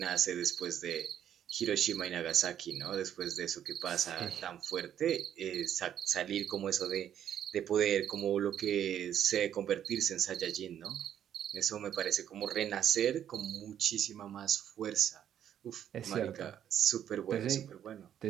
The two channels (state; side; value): quieter; left; 10.0 dB